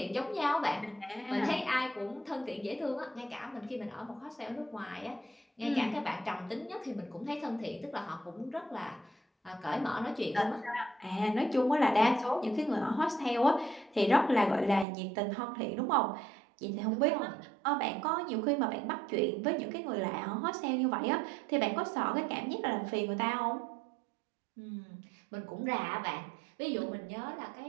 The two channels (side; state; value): left; drops out; at 14.9 s